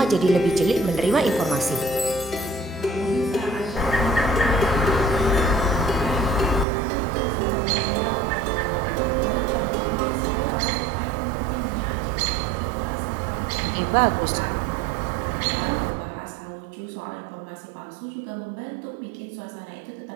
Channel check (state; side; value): drops out; left; at 6.7 s